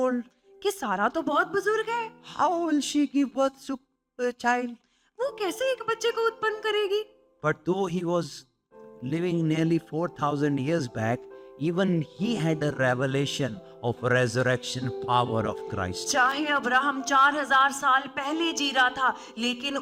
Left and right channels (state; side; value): identical; both; correlation 1.00